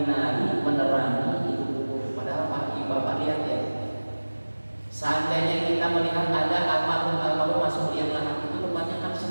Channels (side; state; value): both; inverted; correlation -1.00